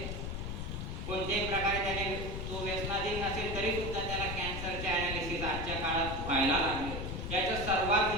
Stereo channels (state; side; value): noise; left; rumble, 4 dB below the sound